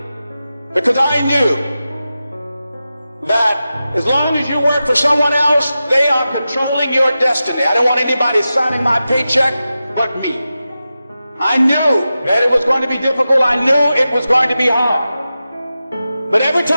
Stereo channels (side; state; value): both; inverted; correlation -0.93